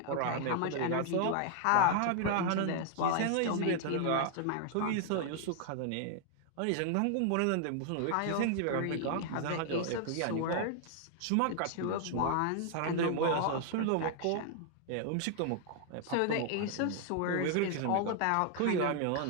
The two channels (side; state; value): both; different; correlation 0.00